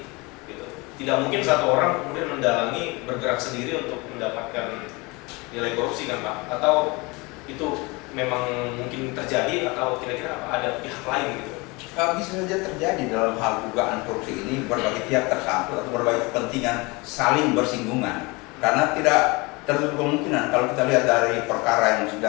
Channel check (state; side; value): quieter; right; 25.9 dB